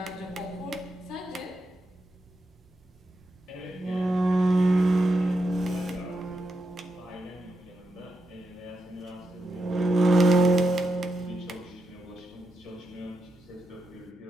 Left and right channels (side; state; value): both; normal; correlation 0.85